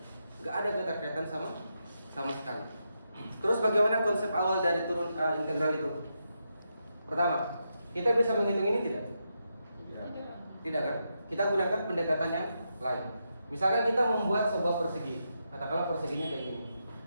Gak ada keterkaitan sama sekali. Terus bagaimana konsep awal dari integral itu? Pertama, kita bisa menghitung ini tidak? Tidak kan? Kita gunakan pendekatan yang lain. Misalkan kita membuat sebuah persegi. Katakanlah perseginya kayak gini.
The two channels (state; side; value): inverted; both; correlation -0.84